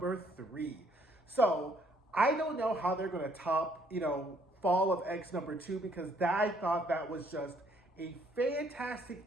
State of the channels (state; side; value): normal; both; correlation 0.66